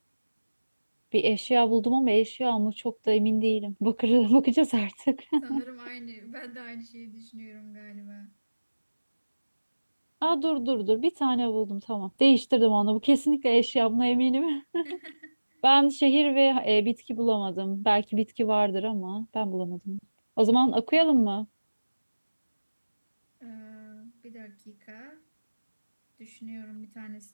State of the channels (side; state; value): both; inverted; correlation -1.00